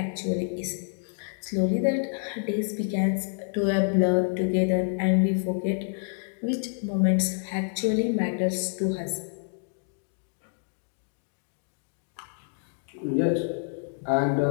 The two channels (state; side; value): silent; right; 59 dB below the other